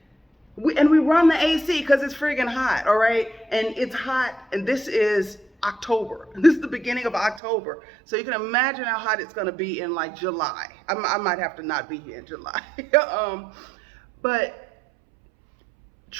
we run the AC because it's friggin' hot, all right? And it's hot, and this is October. This is the beginning of October. So you can imagine how hot it's gonna be in like July. I might have to not be here in July. But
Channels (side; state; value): left; drops out; at 7.4 s